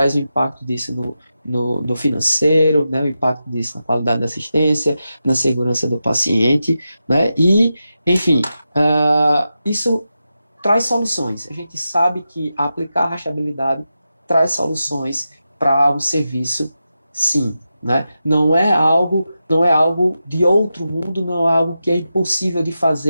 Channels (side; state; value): both; inverted; correlation -0.90